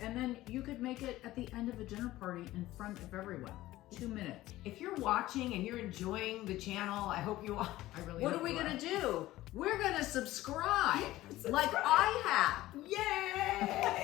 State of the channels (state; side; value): quieter; right; 16.3 dB